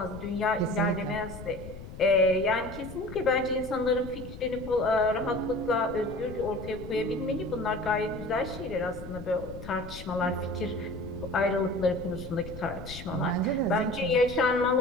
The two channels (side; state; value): left; noise; rumble, 13 dB below the sound